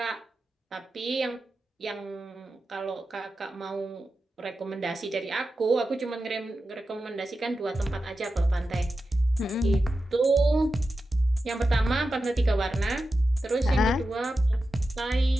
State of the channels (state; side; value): normal; both; correlation 0.91